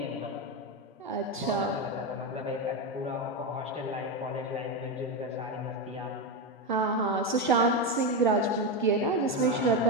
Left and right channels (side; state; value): both; normal; correlation 0.11